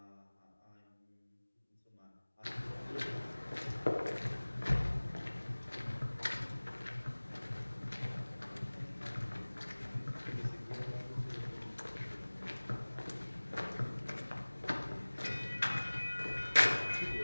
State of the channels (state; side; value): inverted; both; correlation -1.00